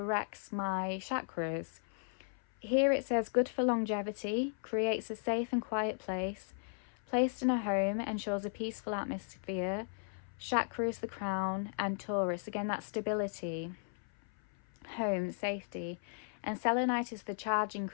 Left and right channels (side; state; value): right; silent; 54 dB below the other